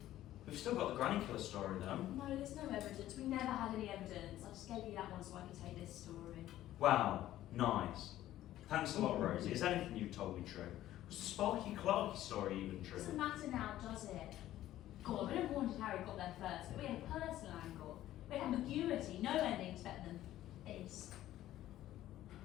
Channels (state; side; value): quieter; right; 13.7 dB